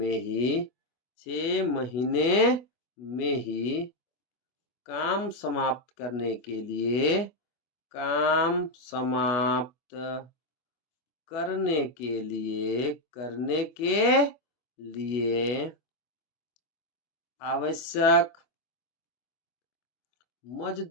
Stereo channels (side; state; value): right; late; 24 ms